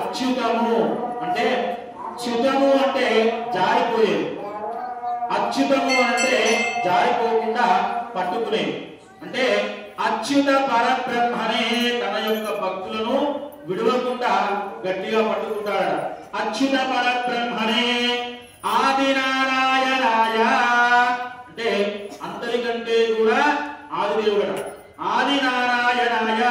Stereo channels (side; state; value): both; identical; correlation 1.00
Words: అంటే చ్యుతము అంటే జారిపోయేది, అచ్యుతము అంటే జారిపోకుండా పట్టుకునేది. అంటే అచ్యుత పరబ్రహ్మనే తన యొక్క భక్తులను విడవకుండా గట్టిగా పట్టుకుంటాడు. అచ్యుత పరబ్రహ్మనే ఆదినారాయణాయ అంటే అందరికంటే కూడా ఆదిదేవుడు. ఆదినారాయణాయ